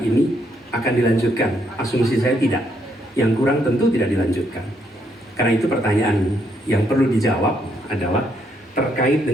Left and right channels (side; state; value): both; normal; correlation 0.74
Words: akan dilanjutkan? Asumsi saya tidak. Yang kurang tentu tidak dilanjutkan. Karena itu pertanyaan yang perlu dijawab adalah terkait